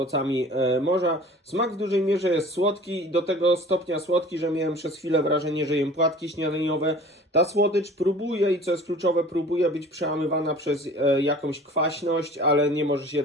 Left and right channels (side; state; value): both; normal; correlation 0.44